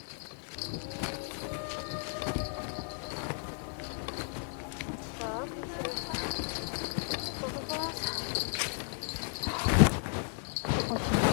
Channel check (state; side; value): silent; right; 55 dB below the other